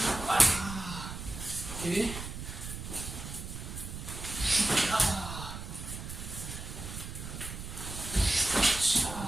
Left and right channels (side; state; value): right; noise; rumble, 8 dB below the sound